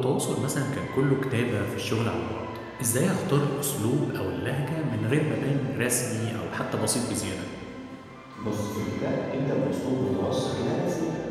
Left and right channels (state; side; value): identical; both; correlation 1.00